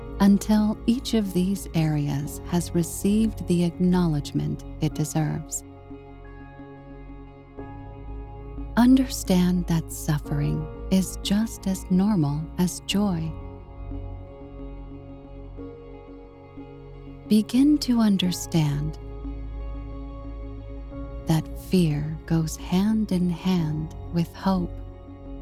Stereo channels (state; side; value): identical; both; correlation 1.00